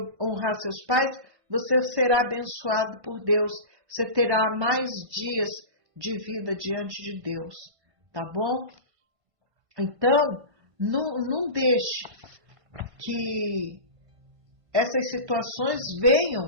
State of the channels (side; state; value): left; late; 1.5 ms